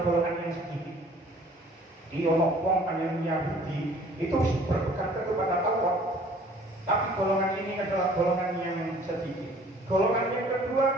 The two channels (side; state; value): both; normal; correlation 0.53